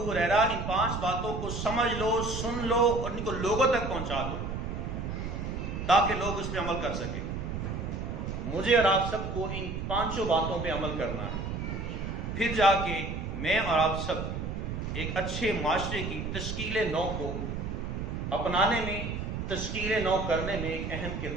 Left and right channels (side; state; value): right; noise; rumble, 4 dB below the sound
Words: ہریرہ ان 5 باتوں کو سمجھ لو، سن لو اور ان کو لوگوں تک پہنچا دو تاکہ لوگ اس پہ عمل کر سکیں۔ مجھے اور آپ سب کو ان 5 باتوں پہ عمل کرنا ہے، پھر جا کے میں اور آپ سب ایک اچھے معاشرے کی تشکیل نو کو اپنانے میں، تشکیل نو کرنے میں ایک اہم